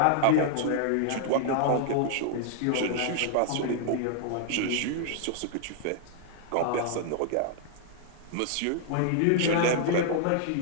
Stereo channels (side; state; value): both; different; correlation -0.01